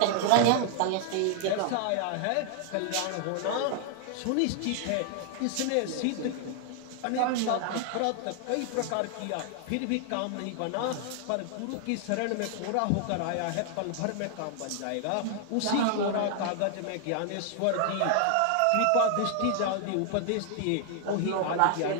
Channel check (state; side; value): different; both; correlation 0.00